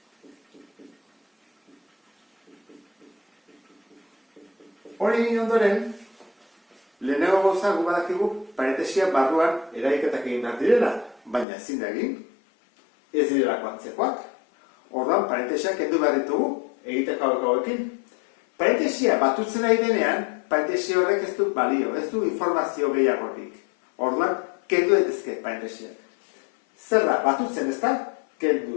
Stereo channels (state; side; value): drops out; right; at 11.5 s